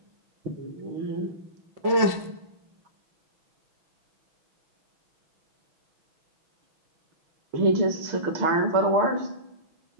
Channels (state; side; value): late; left; 6.1 ms